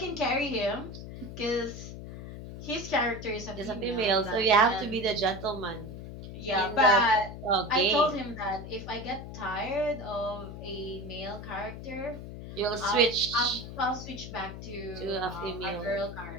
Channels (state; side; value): noise; left; hum, 10 dB below the sound